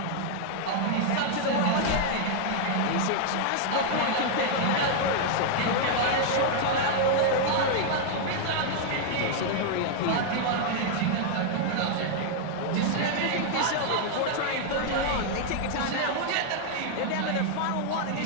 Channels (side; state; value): both; different; correlation 0.00